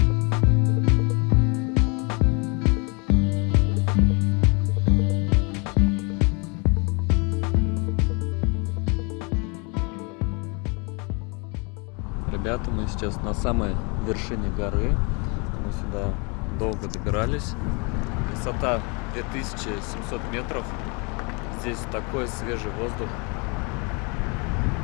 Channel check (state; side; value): quieter; right; 31.8 dB